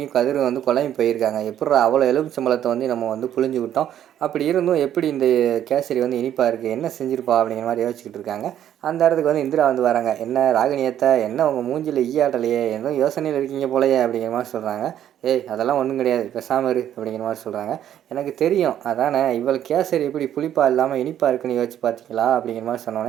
கதிரும் வந்து குழம்பி போயிருக்காங்க. எப்புட்றா அவ்வளோ எலுமிச்சம்பழத்தை வந்து நம்ம வந்து புழிஞ்சு விட்டோம். அப்படி இருந்தும் எப்படி இந்த கேசரி வந்து இனிப்பாக இருக்குது, என்ன செஞ்சிருப்பா அப்படிங்கிற மாதிரி யோசிச்சுக்கிட்டு இருக்காங்க. அந்த இடத்துக்கு வந்து இந்திரா வந்து வராங்க. என்ன ராகினியத்தை, என்ன உங்கள் மூஞ்சில் ஈயாட்டலையே, எதுவும் யோசனையில் இருக்கீங்க போலையே அப்படிங்கிற மாதிரி சொல்கிறாங்க. ஏய் அதெல்லாம் ஒன்றும் கிடையாது, பேசாம இரு அப்படிங்கிற மாதிரி சொல்கிறாங்க. எனக்கு தெரியும் அதானே, இவள் கேசரி எப்படி புளிப்பாக இல்லாமல் இனிப்பாக இருக்குன்னு யோசிச்சு பார்த்தீங்களா அப்படிங்கிற மாதிரி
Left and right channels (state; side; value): quieter; left; 10.7 dB